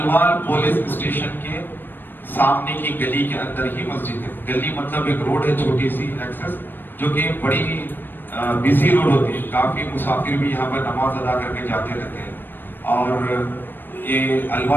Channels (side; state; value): right; late; 0.094 ms